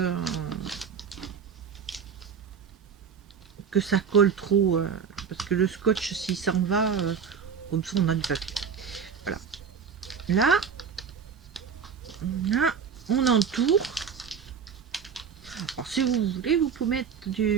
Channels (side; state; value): left; quieter; 6.6 dB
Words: ça colle trop, parce que le scotch s'il s'en va, comme ça on a du papier. Voilà. Là, on entoure. Alors si vous voulez, vous pouvez mettre